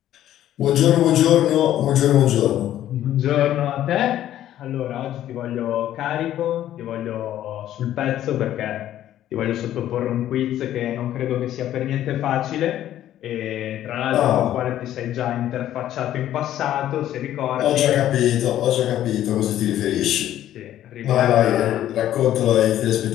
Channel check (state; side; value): quieter; right; 12.3 dB